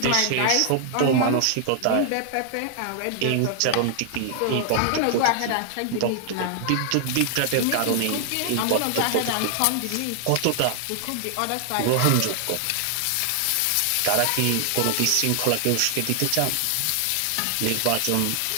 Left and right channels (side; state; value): both; different; correlation 0.00